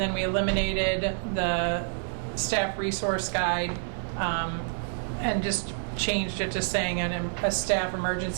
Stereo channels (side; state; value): left; silent; digital silence